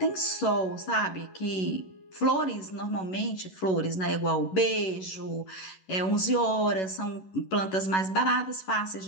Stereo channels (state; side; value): late; right; 11 ms